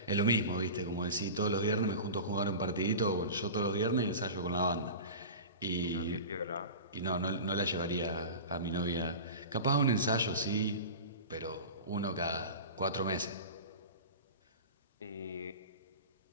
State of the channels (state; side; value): inverted; both; correlation -0.32